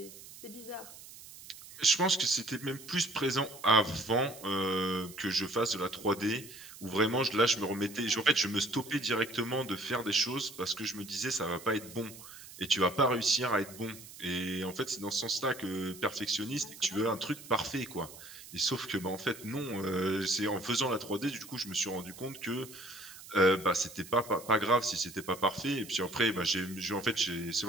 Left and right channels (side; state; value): right; noise; hiss, 16 dB below the sound